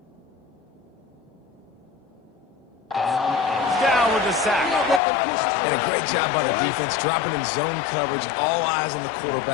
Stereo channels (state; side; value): drops out; right; at 5.0 s